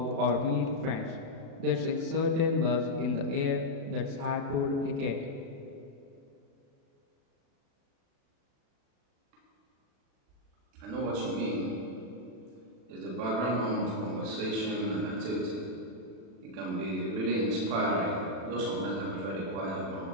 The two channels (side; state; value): left; late; 36 ms